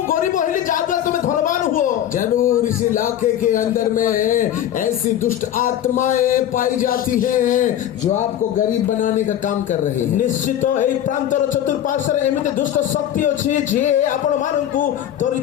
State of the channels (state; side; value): quieter; right; 11.1 dB